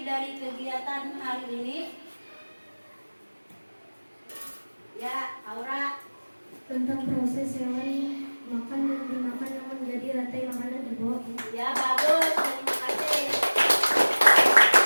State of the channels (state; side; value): inverted; both; correlation -1.00